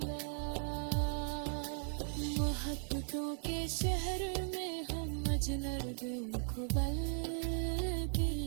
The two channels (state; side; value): silent; left; 53 dB below the other